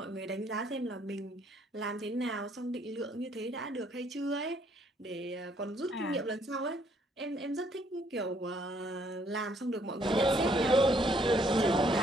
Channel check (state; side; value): normal; both; correlation 0.67